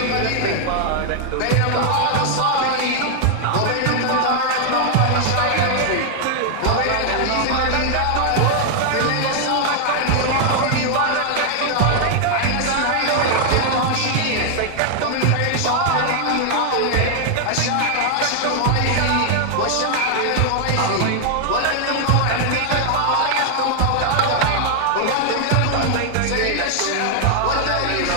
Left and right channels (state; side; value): different; both; correlation 0.00